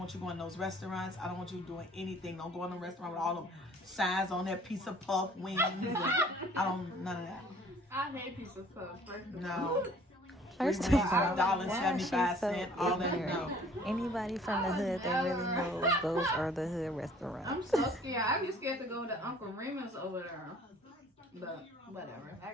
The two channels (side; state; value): both; normal; correlation 0.54